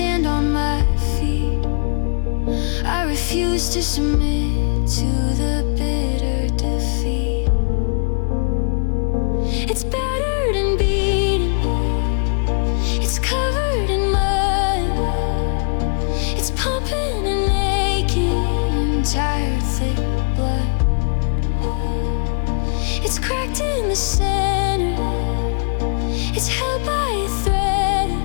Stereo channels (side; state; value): right; silent; digital silence